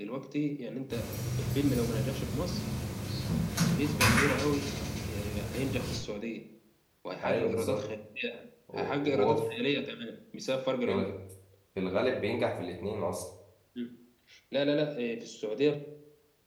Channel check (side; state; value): both; identical; correlation 1.00